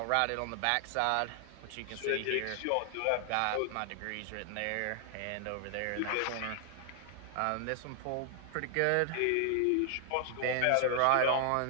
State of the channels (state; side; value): different; both; correlation 0.00